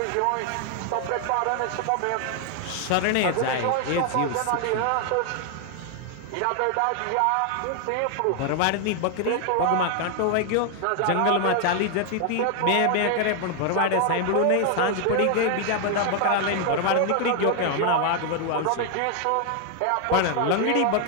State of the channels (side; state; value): both; different; correlation 0.00